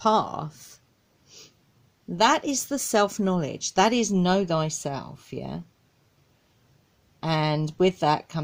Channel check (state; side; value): identical; both; correlation 1.00